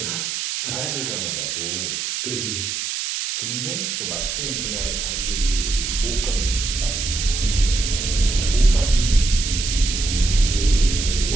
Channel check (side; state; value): right; noise; hiss, 3 dB below the sound